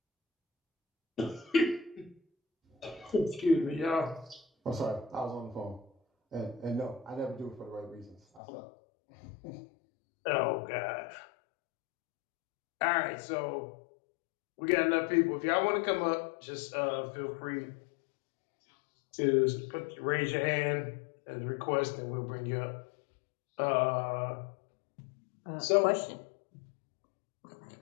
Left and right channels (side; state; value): right; drops out; at 8.4 s